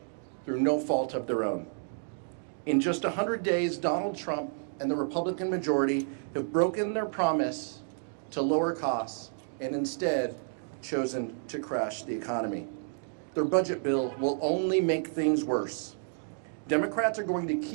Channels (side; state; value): left; silent; digital silence